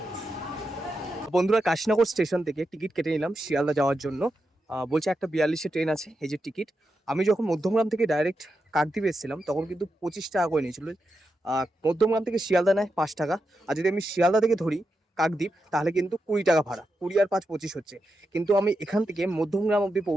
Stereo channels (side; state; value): both; normal; correlation 0.87